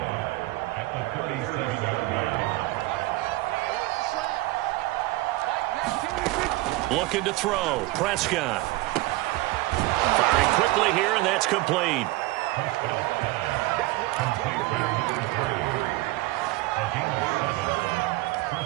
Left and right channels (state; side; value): quieter; left; 19.4 dB